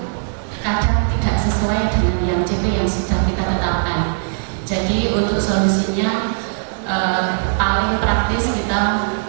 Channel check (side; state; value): left; silent; digital silence